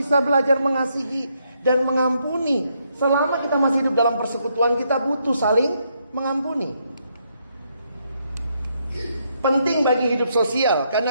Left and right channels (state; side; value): inverted; both; correlation -0.76